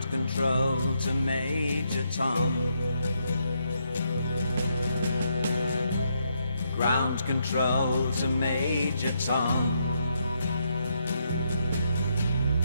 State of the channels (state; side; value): inverted; both; correlation -0.78